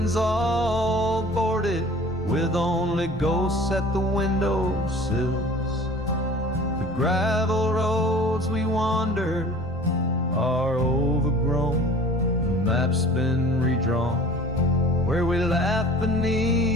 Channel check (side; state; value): left; noise; rumble, 16 dB below the sound